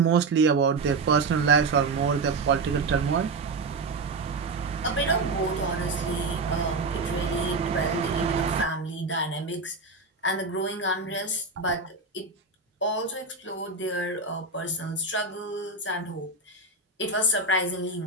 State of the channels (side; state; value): left; quieter; 3.7 dB